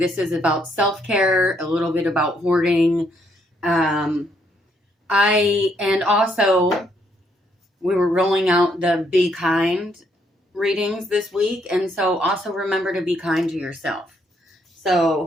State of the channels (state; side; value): normal; both; correlation 0.72